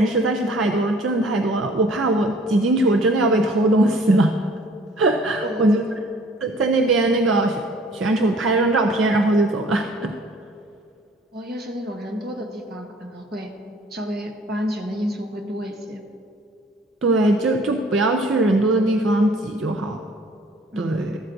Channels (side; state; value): both; normal; correlation 0.54